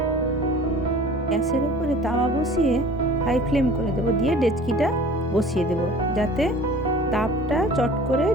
গ্যাসের উপরে তাওয়া বসিয়ে হাই ফ্লেম করে দেবো, দিয়ে ডেচকিটা বসিয়ে দেব যাতে তাপটা চট করে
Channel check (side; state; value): both; normal; correlation 0.45